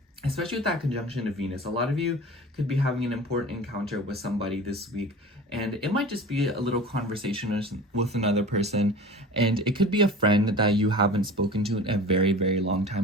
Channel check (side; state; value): both; normal; correlation 0.37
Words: Especially with that conjunction of Venus, a lot of you could be having an important encounter with somebody this week, and it might just be a little conversation with another person, and it could be a friend that you haven't spoken to in a very, very long